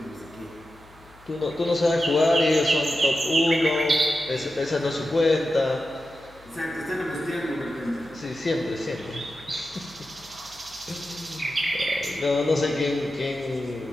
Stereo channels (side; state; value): left; noise; hum, 25 dB below the sound